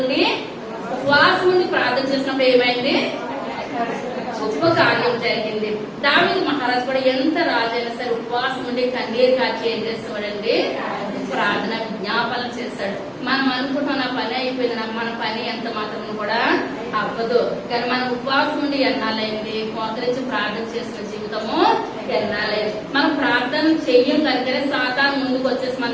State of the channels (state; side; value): identical; both; correlation 1.00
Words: ఉండి ఉపవాసం ఉండి ప్రార్థన చేసినప్పుడు ఏమైంది? గొప్ప కార్యం జరిగింది. దావీదు మహారాజు కూడా ఎంత రాజైనా సరే ఉపవాసం ఉండి కన్నీరు కాచి ఏం చేస్తాడండి? ప్రార్థన విజ్ఞాపన చేస్తాడు. మనం అనుకుంటున్న నా పని అయిపోయింది, మన పని ఎంత మాత్రం కూడా అవ్వదు. కానీ మనం ఉపవాసం ఉండి ఎన్నాలైంది? మోకరించి ప్రార్థన చేసిన జీవితము ఎన్నాలైంది. మనం ప్రార్థన చెయ్యం కనుకనే సాతాను ముందుకు వచ్చేసి మన